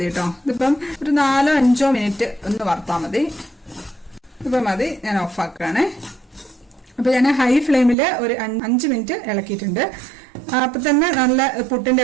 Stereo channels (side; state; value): left; drops out; at 8.0 s